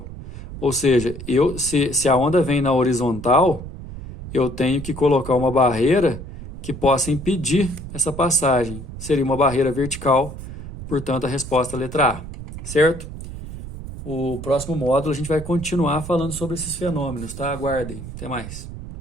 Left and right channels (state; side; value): noise; right; rumble, 11 dB below the sound